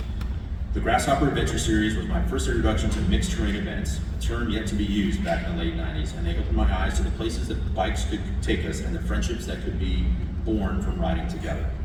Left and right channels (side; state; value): both; identical; correlation 1.00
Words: The Grasshopper Adventure Series was my first introduction to mixed-terrain events, a term yet to be used back in the late 90s, and they opened my eyes to the places that bikes could take us and the friendships that could be born from riding together.